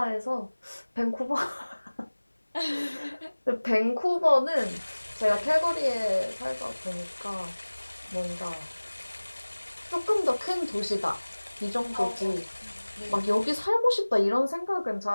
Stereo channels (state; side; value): inverted; both; correlation -1.00